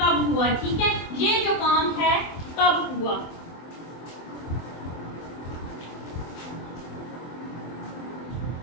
हुआ, ठीक है, ये जो काम है कब हुआ।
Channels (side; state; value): right; late; 24 ms